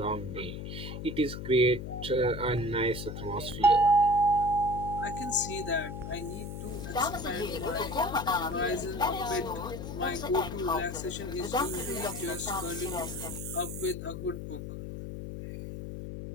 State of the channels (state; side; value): noise; left; hum, 7 dB below the sound